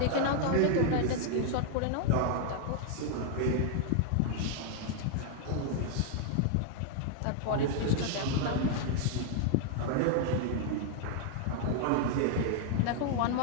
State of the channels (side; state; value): both; different; correlation 0.00